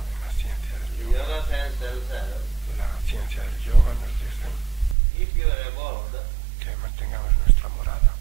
la ciencia del The yoga. yoga science tells us, La ciencia del yoga nos dice keep your abode que mantengamos nuestra morada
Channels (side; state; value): left; drops out; at 5.0 s